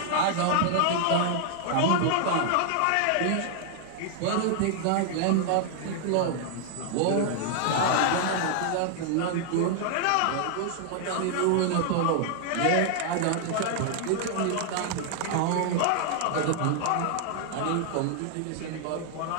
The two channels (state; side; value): different; both; correlation 0.00